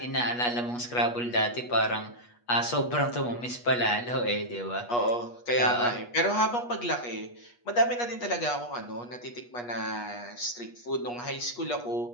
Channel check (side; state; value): right; late; 8.3 ms